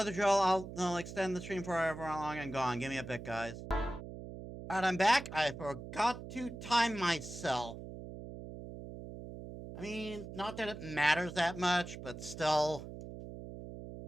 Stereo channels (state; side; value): noise; right; hum, 11 dB below the sound